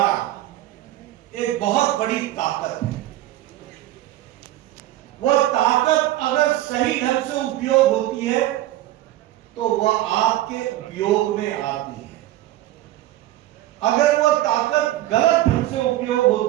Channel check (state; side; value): quieter; left; 15.0 dB